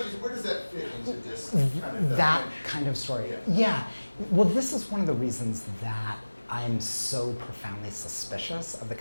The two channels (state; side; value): inverted; both; correlation -1.00